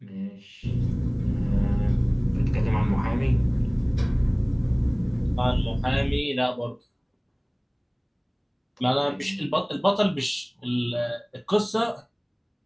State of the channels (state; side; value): identical; both; correlation 1.00